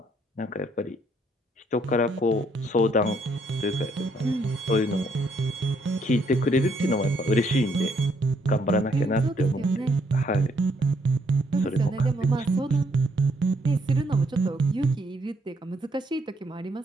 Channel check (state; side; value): normal; both; correlation 0.70